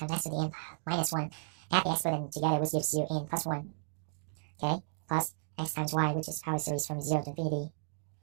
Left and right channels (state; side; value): silent; left; digital silence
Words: x to the n minus 1. Add the exponent together, which gives you n plus 1. Okay, plus x times y, which is power series from 0 to infinity